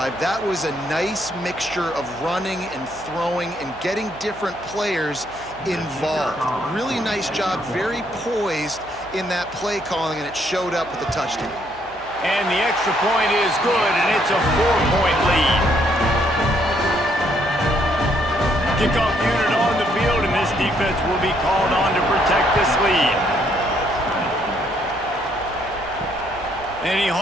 That was a nice mixture of running and throwing and getting different players involved. Really nice job, very poised in that play calling, and it showed up with the touchdown. And the extra point is good, and it's a 4-point lead. Kickoff unit on the field, and this defense will be called on to protect this lead. And he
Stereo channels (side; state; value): right; noise; hum, 23 dB below the sound